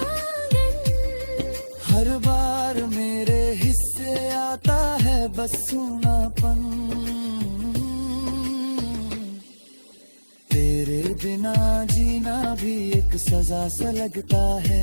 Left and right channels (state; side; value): inverted; both; correlation -1.00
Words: हर बार मेरे हिस्से आता है बस सूनापन। तेरे बिना जीना भी एक सजा सा लगता